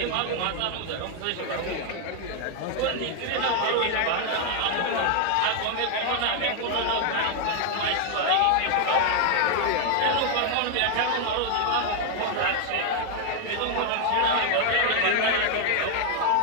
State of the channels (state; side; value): different; both; correlation 0.00